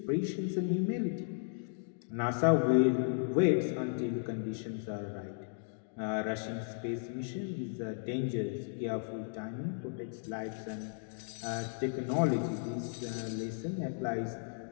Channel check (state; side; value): silent; right; digital silence